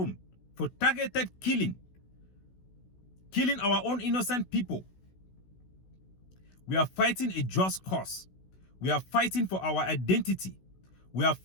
for targeted killing our own innocent people. We are fighting a just cause. We are fighting for our identity. We are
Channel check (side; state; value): right; late; 16 ms